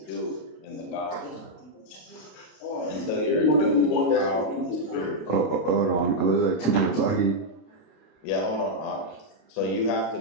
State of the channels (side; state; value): right; late; 32 ms